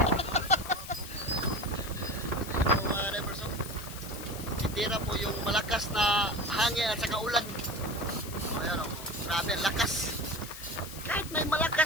Tira po yung malakas na hangin at saka ulan. Ayan o, grabe, lakas. Kahit may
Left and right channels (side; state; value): left; noise; hiss, 12 dB below the sound